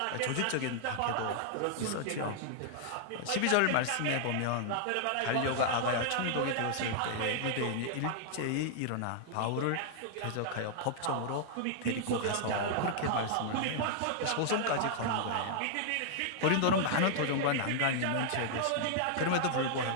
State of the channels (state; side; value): different; both; correlation -0.01